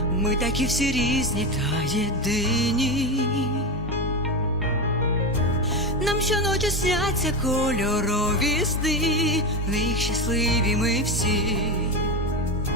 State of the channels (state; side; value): normal; both; correlation 0.17